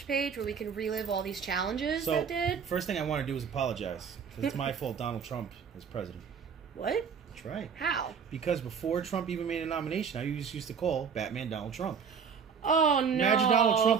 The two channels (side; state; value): left; quieter; 6.6 dB